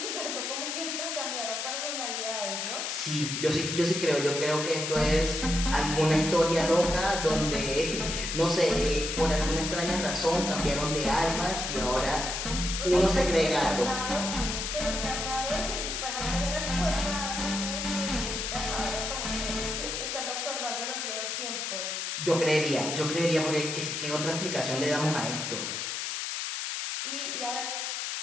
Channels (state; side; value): noise; left; hiss, 3 dB below the sound